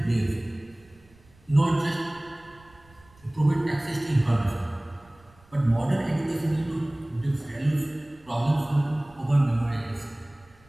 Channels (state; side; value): noise; right; rumble, 29 dB below the sound